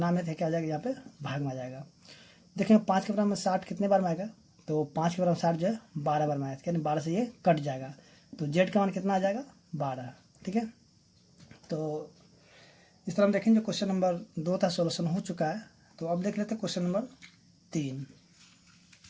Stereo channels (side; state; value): both; identical; correlation 1.00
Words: में थे क्या हो जाएगा, यहाँ पे भाग में आ जाएगा। देखेंगे 5 के बराबर में 60 कितने बार में आएगा, तो 5 के बराबर 60 जो है 12 बार में आएगा, यानी 12 से ये कट जाएगा, तो z का मान कितना आ जाएगा 12। ठीक है, तो इस तरह हम देखेंगे क्वेश्चन नंबर 2 था, सॉल्यूशन हो चुका है। तो अब देख लेते हैं क्वेश्चन नंबर 3।